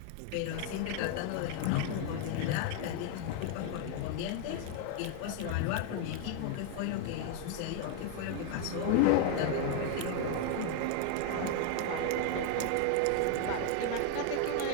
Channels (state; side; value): different; both; correlation 0.00